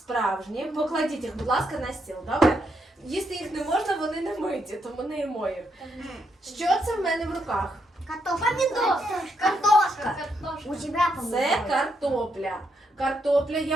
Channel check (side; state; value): both; normal; correlation 0.78